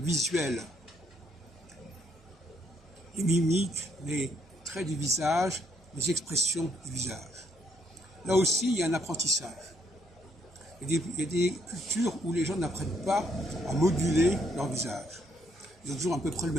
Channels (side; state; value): both; normal; correlation 0.71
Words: Les mimiques, les traits du visage, les expressions du visage. Là aussi, il y a un apprentissage. Il y a des cultures où les gens n'apprennent pas à moduler leur visage. Ils ont toujours à peu près le